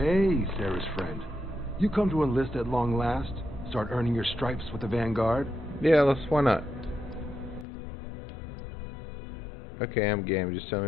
Sarah's friend. You come to enlist at long last? Start earning your stripes with the Vanguard? Yeah, why not? Okay, I'm game. Just tell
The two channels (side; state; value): right; drops out; at 7.7 s